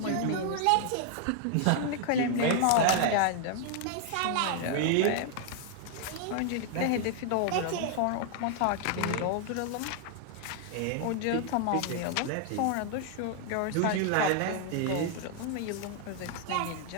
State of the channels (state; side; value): different; both; correlation 0.00